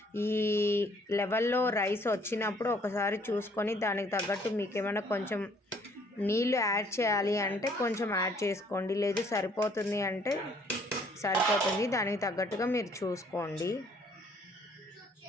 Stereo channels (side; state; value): both; normal; correlation 0.62